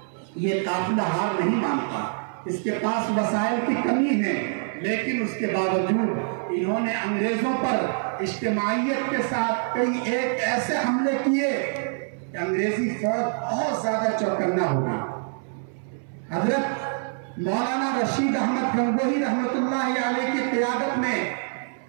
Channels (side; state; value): left; silent; 62 dB below the other